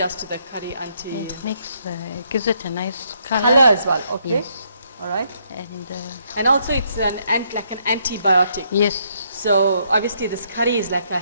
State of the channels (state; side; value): inverted; both; correlation -0.73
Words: to the curry, Auntie? It makes, gives it a nice color. Color as well. Okay. Yes. All right. And And also it's like an antibiotic. yes, So obviously this curry is like a